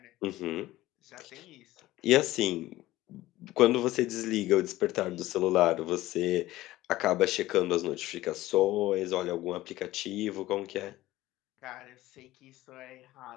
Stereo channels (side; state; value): right; quieter; 16.6 dB